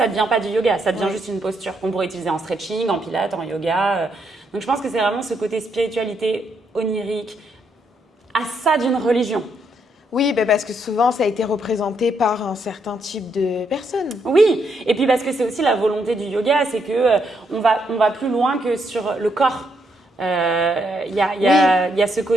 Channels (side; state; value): both; normal; correlation 0.76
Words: ne devient pas du yoga, ça devient juste une posture qu'on pourrait utiliser en stretching, en pilates, en yoga. Donc, je pense que c'est vraiment ce côté spiritualité onirique, à ça d'une religion. Oui, parce que souvent, ça a été représenté par un certain type de personnes. Oui, et puis parce que c'est aussi la volonté du yoga, c'est qu'on va plus loin que sur le corps. Il y a ce